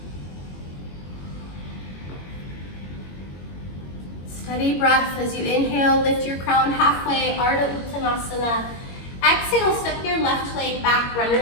Steady breath as you inhale, lift your crown halfway, Ardha Uttanasana. Exhale, step your left leg back,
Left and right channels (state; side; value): late; right; 21 ms